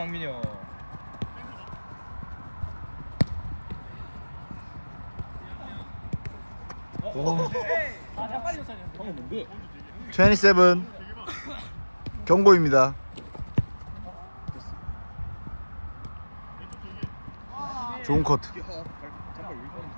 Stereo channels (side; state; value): both; inverted; correlation -1.00